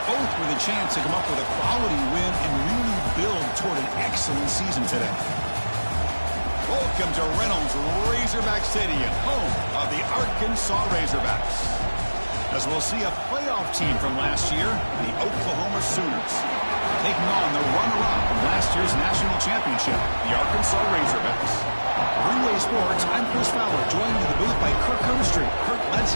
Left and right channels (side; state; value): both; inverted; correlation -1.00